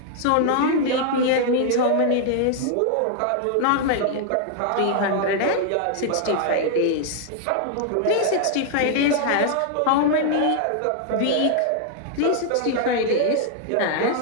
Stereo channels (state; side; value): different; both; correlation 0.00